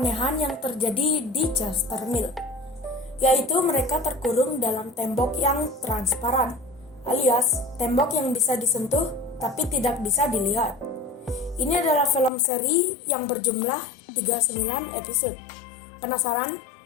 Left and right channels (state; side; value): drops out; right; at 12.3 s